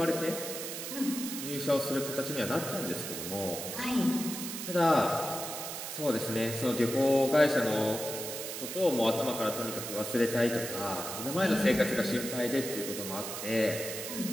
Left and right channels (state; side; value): noise; right; hiss, 6 dB below the sound